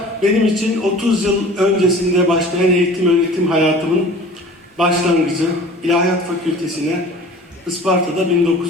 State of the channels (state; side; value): normal; both; correlation 0.44